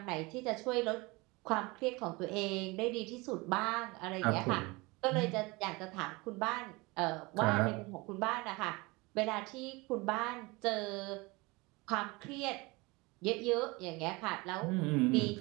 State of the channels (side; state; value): left; quieter; 24.5 dB